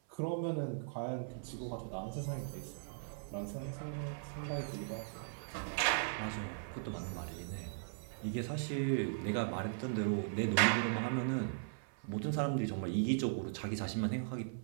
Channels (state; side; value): silent; left; 52 dB below the other